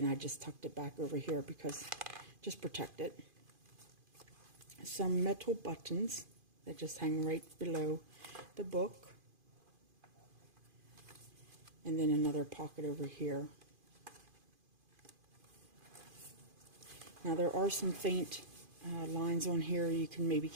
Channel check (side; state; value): left; late; 2.5 ms